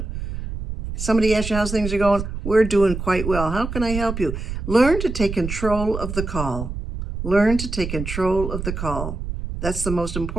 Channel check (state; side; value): noise; right; rumble, 6 dB below the sound